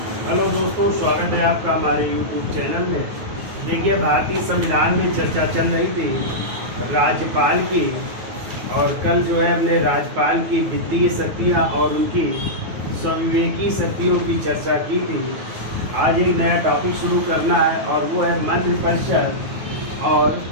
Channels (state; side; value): late; left; 9.3 ms